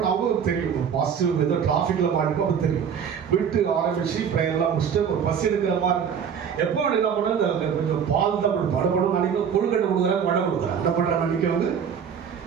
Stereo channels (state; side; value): quieter; left; 7.5 dB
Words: அவங்களுக்கு தெரியும், பாசிட்டிவ் ஏதோ டிராஃபிக்கில் மாட்டிப்போம், அப்போ தெரியும். போயிட்டு ஆரம்பிச்சு ப்ரேயர்லாம் முடிச்சுட்டு ஒரு பஸ் எடுக்கிற மாதிரி இருக்கு. எப்போ என்ன பண்ண கொஞ்சம் பால் தான் படப்படும் நினைக்க, கொழுக்கட்டை கொடுக்குறேன், வடை கொடுக்குறேன். என்ன பண்ணுறேன் நினைக்க வந்து